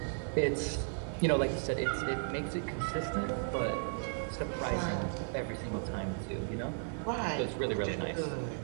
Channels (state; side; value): silent; left; 54 dB below the other